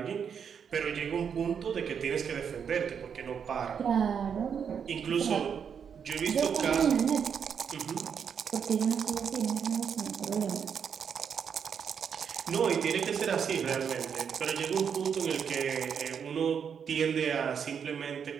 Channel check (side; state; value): left; quieter; 7.2 dB